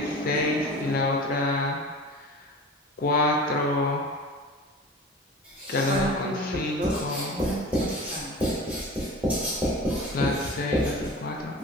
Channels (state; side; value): normal; both; correlation 0.36